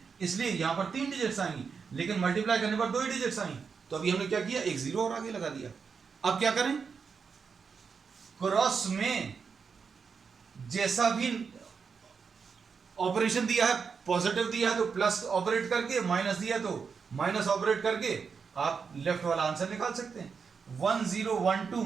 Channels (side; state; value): left; quieter; 5.8 dB